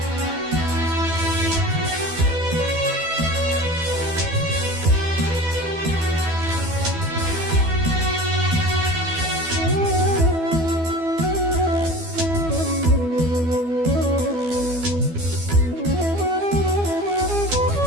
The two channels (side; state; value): left; late; 12 ms